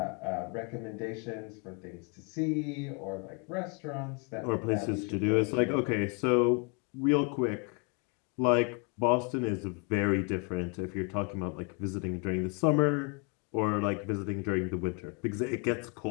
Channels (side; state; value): right; quieter; 34.7 dB